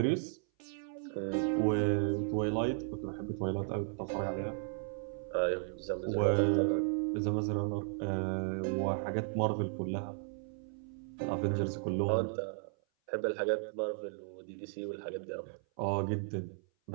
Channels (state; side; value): silent; left; 54 dB below the other